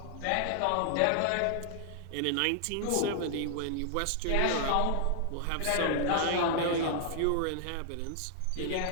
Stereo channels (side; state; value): both; different; correlation 0.00